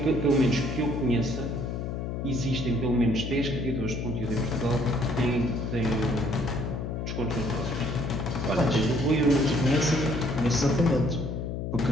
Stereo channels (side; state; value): left; noise; hum, 4 dB below the sound